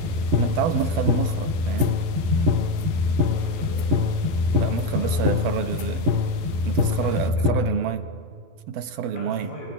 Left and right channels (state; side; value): late; left; 12 ms